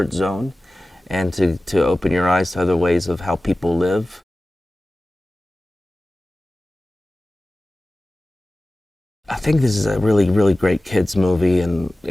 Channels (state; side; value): normal; both; correlation 0.96